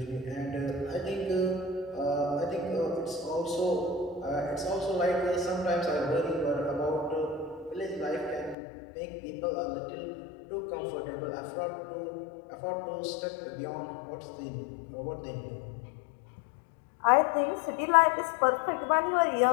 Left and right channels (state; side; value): drops out; right; at 8.6 s